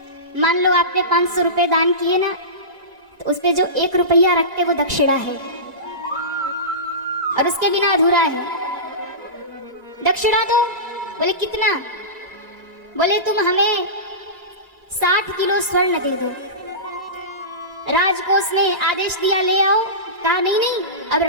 मान लो आपने 500 रुपए दान किए ना, तो उस पे जो 1 रुपया रखते वो दक्षिणा है, और उसके बिना अधूरा है। दक्षिणा दो, बोले कितना, बोले तुम हमें 60 किलो स्वर्ण दे दो। राजकोष ने आदेश दिया ले आओ, कहा नहीं, अब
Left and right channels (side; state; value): left; late; 1.9 ms